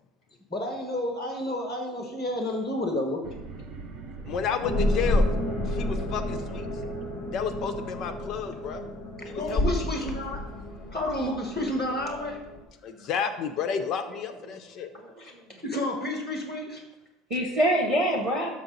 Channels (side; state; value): both; normal; correlation 0.52